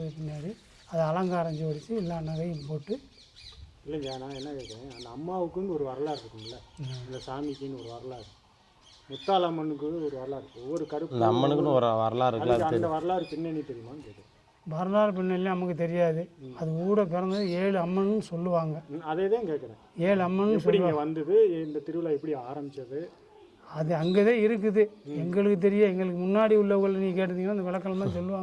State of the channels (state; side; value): identical; both; correlation 1.00